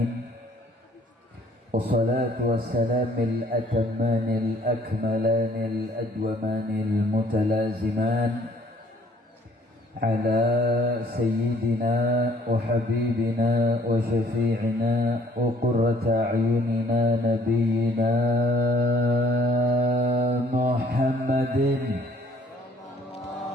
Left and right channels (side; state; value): both; normal; correlation 0.60